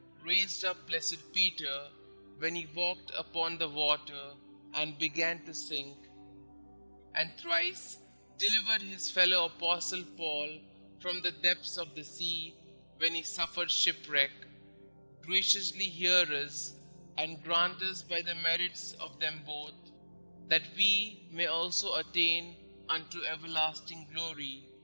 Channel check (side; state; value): both; inverted; correlation -1.00